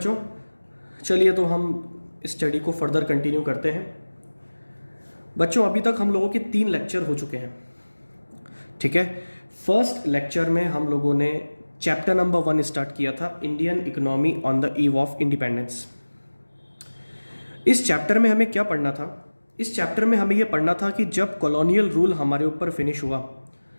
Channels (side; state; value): both; inverted; correlation -1.00